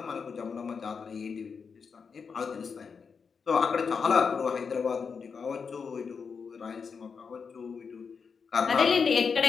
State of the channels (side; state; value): right; quieter; 5.7 dB